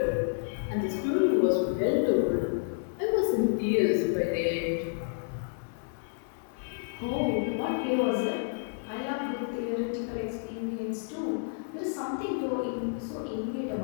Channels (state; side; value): silent; right; 58 dB below the other